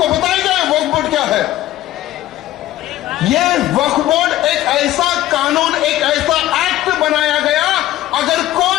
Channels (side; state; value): right; quieter; 14.5 dB